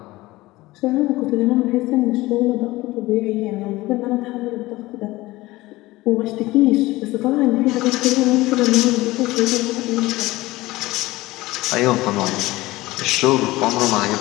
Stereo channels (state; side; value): quieter; right; 19.1 dB